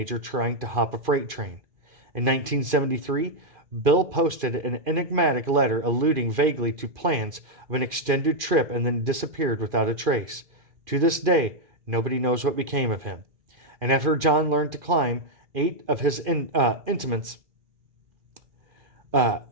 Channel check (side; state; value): left; late; 2.4 ms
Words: trying to hop a freight train. In 1973, Bill posted an enigmatic letter alluding vaguely to plans of an extended trip and then disappeared without a trace. To this day, nobody knows what became of him. And after John learned to climb, 8 of his intimates